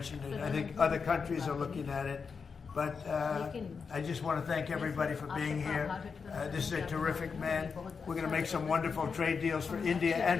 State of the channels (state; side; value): quieter; right; 5.5 dB